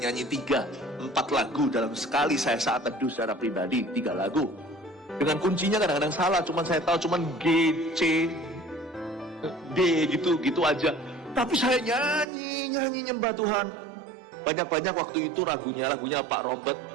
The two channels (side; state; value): left; drops out; at 12.2 s